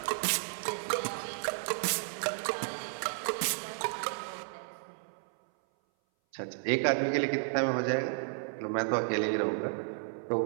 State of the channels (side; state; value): left; silent; 56 dB below the other